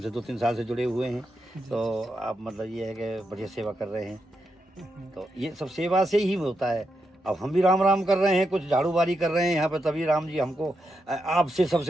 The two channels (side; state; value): both; normal; correlation 0.84